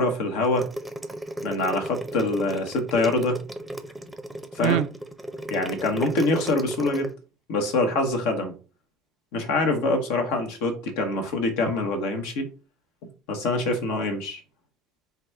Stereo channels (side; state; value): both; normal; correlation 0.33